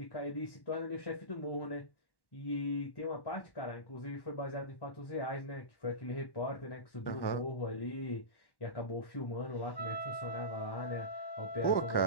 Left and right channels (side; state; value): right; late; 1.1 ms